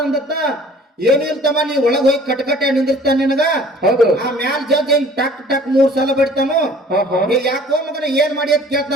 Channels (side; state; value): both; normal; correlation 0.51